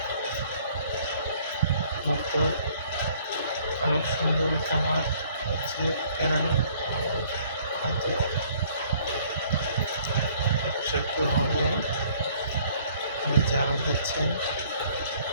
মুগ্ধ। অনেক সুন্দর একটা মাঠ হচ্ছে কেরানি, হয়তো একটু হবে যারা দিচ্ছেন।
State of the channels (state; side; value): inverted; both; correlation -0.59